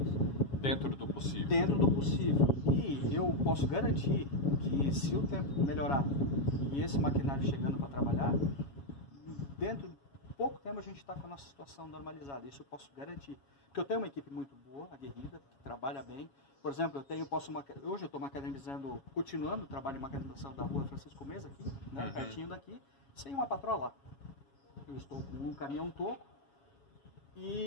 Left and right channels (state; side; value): late; right; 7.2 ms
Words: Dentro do possível. Dentro do possível. E eu posso garantir que se o tempo melhorar e esse maquinário chegando para trabalhar, dentro de pouco tempo a gente está com a nossa situação normalizada. Isso eu posso garantir. Porque eu tenho uma equipe muito boa, aguerrida, que trabalha bem. Por exemplo, hoje eu estou macadamizando, continuando o trabalho de macadamização da rua Francisco Mesa, aqui, né, pertinho daqui, sem uma patroa lá. Eu estou com um caminhão toco